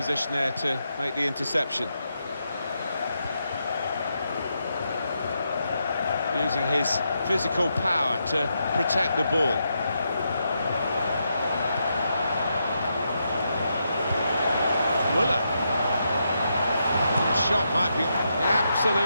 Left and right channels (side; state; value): both; inverted; correlation -0.82